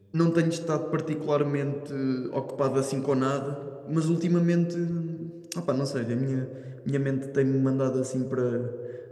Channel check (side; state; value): both; identical; correlation 1.00